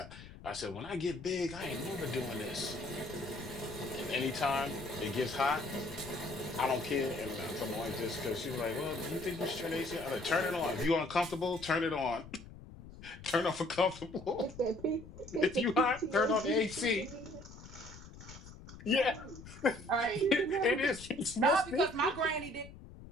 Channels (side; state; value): left; noise; rumble, 16 dB below the sound